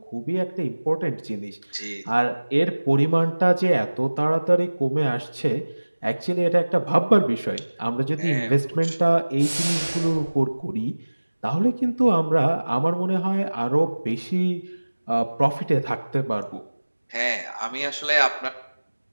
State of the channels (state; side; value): inverted; both; correlation -1.00